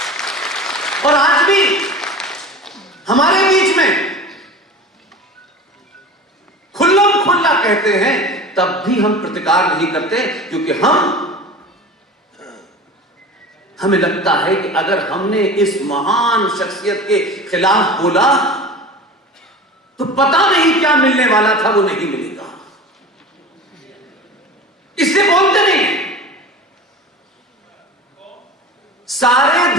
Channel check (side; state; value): both; normal; correlation 0.35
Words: और आज भी हमारे बीच में खुल्लम खुल्ला कहते हैं, तब भी हम प्रतिकार नहीं करते, क्योंकि हमें लगता है कि अगर हमने इस महान शख्सियत के खिलाफ बोला तो पता नहीं क्या मिलने वाला था, वो नहीं मिलेगा, इसलिए बोलते नहीं। सारे